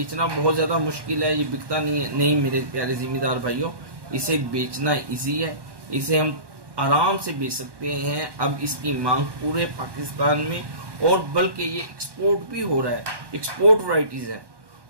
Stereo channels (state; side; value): late; left; 1.1 ms